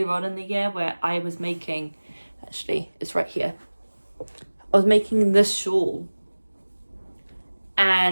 on in the year where I was making, actually it's right here, I was making this shawl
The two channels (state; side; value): inverted; both; correlation -1.00